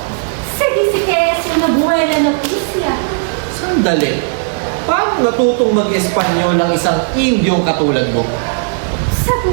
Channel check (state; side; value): silent; left; digital silence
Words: Se dice que es una buena noticia. Sandali. Paano natutong mag-Espanyol ng isang Indyong katulad mo? Sa